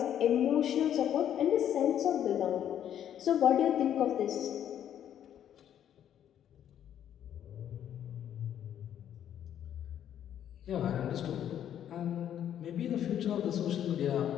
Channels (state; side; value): quieter; right; 10.2 dB